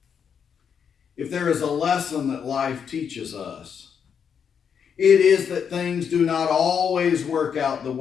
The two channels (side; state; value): right; quieter; 7.3 dB